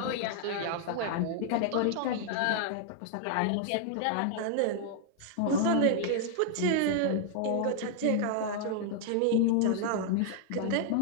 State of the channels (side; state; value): both; different; correlation 0.00